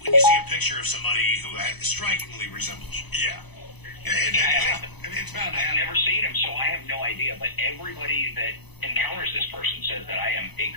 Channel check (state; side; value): late; right; 0.99 ms